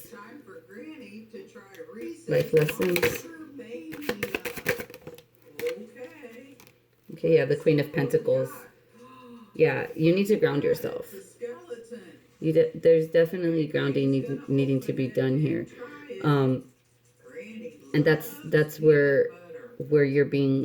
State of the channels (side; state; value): both; identical; correlation 1.00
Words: Time for Granny to try Life lessons. Okay. Okay, yeah, the Queen of Pentacles. Yeah, you need to ground yourself. There's definitely grounding needing to be done here. And that's where you're